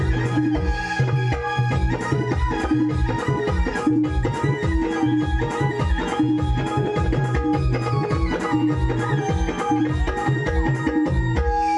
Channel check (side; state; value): both; identical; correlation 1.00